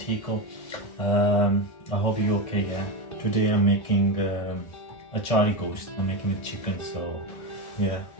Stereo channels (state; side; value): late; right; 1.6 ms